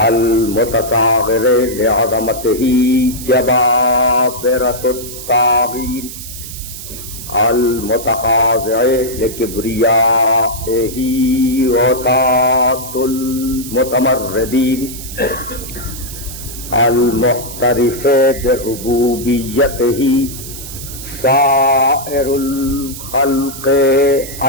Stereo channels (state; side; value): noise; right; hiss, 11 dB below the sound